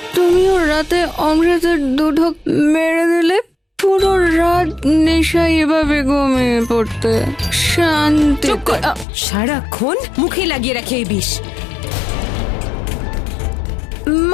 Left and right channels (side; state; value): right; drops out; at 9.1 s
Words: তুমিও রাতে অমৃতের দুধক মেরে দিলে। পুরো রাত নেশায় এভাবে ঘুমিয়ে পড়তে। শান্তি। চুপ কর, সারাক্ষণ মুখে লাগিয়ে রাখে এই বিষ।